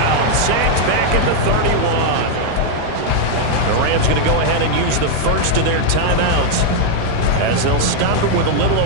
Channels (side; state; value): both; different; correlation 0.00